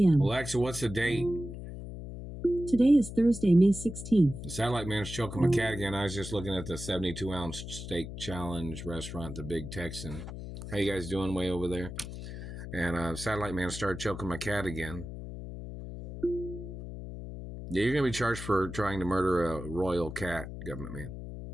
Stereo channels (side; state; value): left; noise; hum, 9 dB below the sound